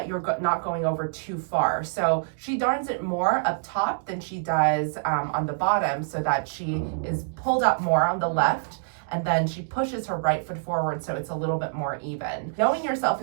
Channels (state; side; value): silent; left; digital silence